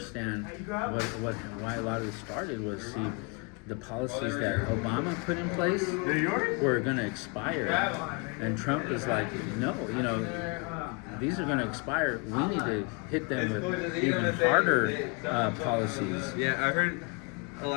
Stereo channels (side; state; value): right; quieter; 32.6 dB